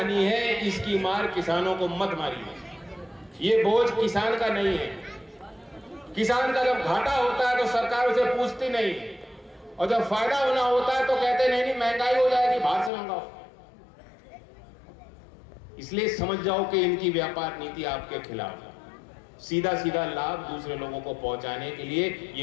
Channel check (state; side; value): drops out; right; at 12.9 s